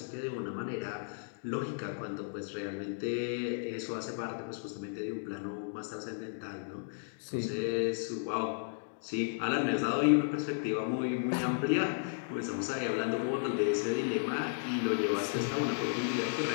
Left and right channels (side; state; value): right; silent; digital silence